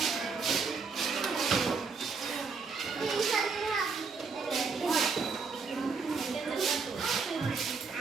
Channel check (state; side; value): quieter; left; 4.9 dB